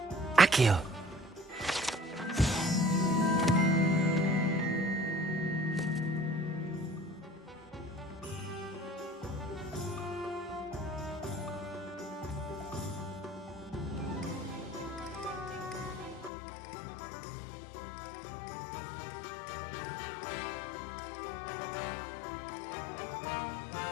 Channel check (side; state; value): right; drops out; at 16.3 s